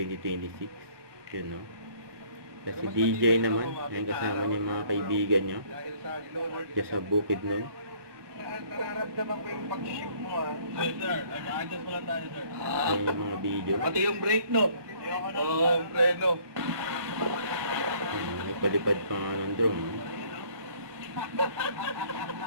yun know. Kasi DJ naman, ayun, kasama niya mga kaibigan niya diyan sa bukid nun. Nararamdaman ko yung pag-ship mo Sir, adjust mo lang tayo, sir. Ayun yung mga video. Pati yung brake, no? Oo, yung preno. Nagpalipad pa nga ng drone.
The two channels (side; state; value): left; late; 1.2 ms